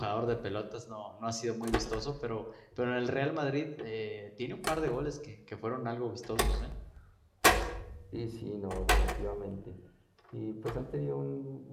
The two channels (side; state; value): both; identical; correlation 1.00